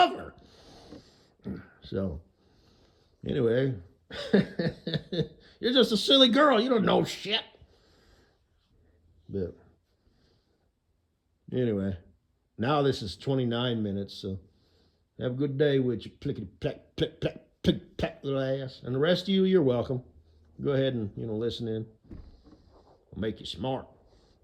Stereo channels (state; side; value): identical; both; correlation 1.00